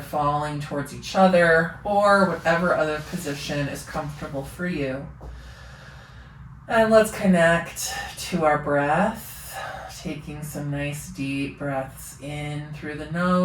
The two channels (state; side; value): identical; both; correlation 1.00